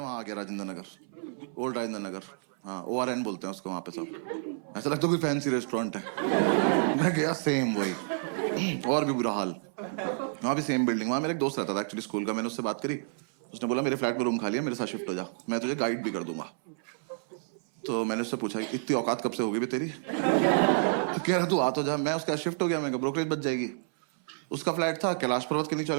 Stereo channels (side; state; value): left; silent; 58 dB below the other